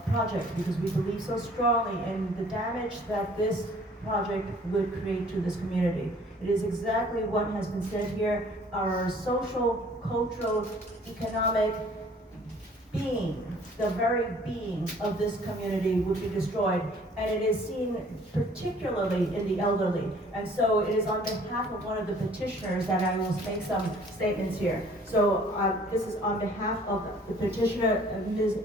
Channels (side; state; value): both; normal; correlation 0.55